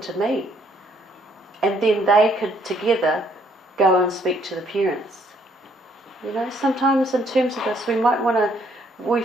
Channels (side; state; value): both; normal; correlation 0.67